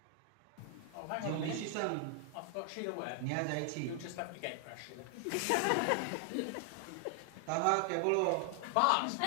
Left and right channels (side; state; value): both; different; correlation 0.00